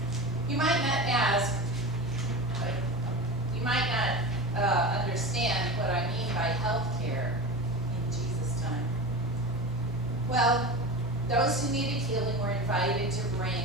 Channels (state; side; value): noise; right; hum, 20 dB below the sound